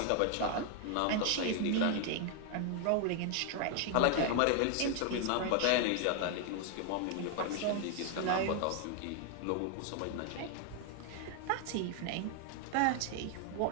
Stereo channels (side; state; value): both; different; correlation 0.00